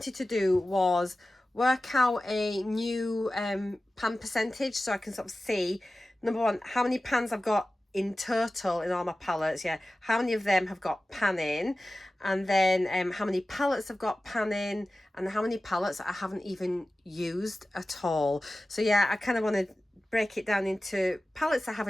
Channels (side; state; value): both; normal; correlation 0.96